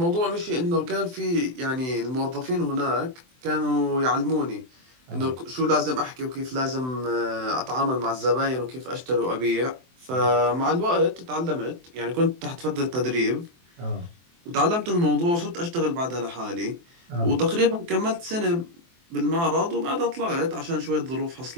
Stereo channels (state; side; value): late; left; 23 ms